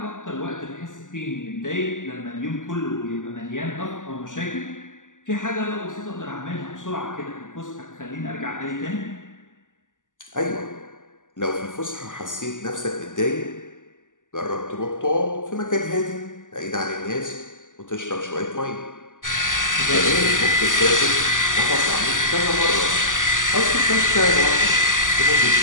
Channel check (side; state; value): right; late; 0.87 ms